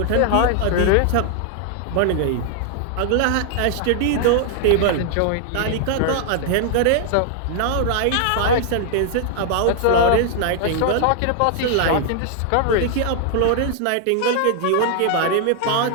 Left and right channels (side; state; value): both; different; correlation 0.00